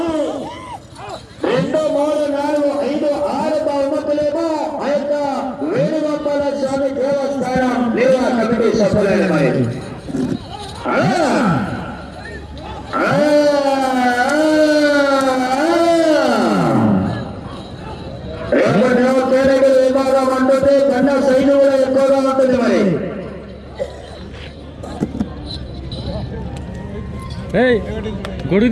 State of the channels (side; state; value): both; identical; correlation 1.00